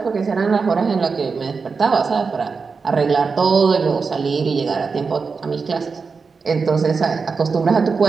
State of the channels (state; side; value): quieter; left; 4.9 dB